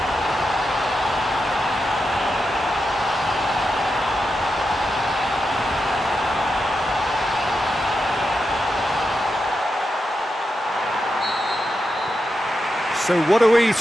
So what are we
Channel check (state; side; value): normal; both; correlation 0.87